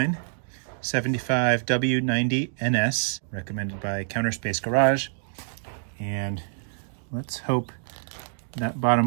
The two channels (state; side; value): silent; left; digital silence